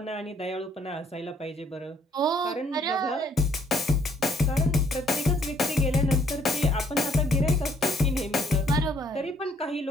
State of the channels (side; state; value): both; normal; correlation 0.64